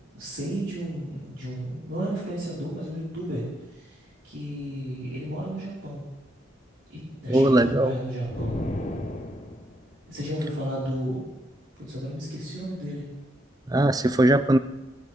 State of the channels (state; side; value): normal; both; correlation 0.78